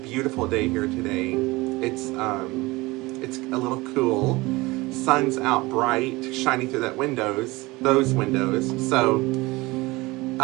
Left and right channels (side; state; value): left; quieter; 21.9 dB